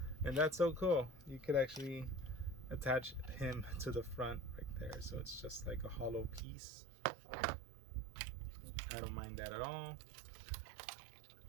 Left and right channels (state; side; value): drops out; left; at 6.4 s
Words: And that's so cool. You could actually attach him to the front right there, so it's just like a hollow piece. I don't mind that at all.